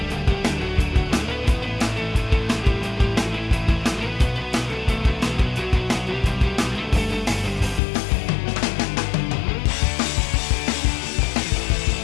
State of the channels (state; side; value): drops out; right; at 7.8 s